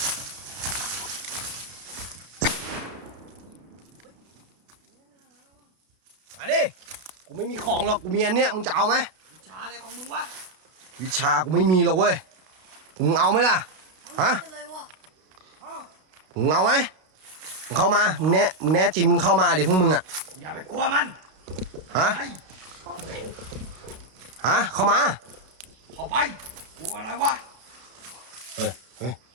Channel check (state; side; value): late; left; 32 ms